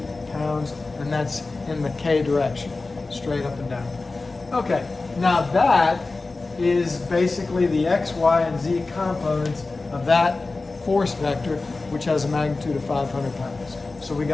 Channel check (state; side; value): quieter; right; 3.6 dB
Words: pounds, and that's in the k direction, straight up and down. Okay, now that is basically the x, y, and z components of that force vector, which has a magnitude of 500 pounds. So we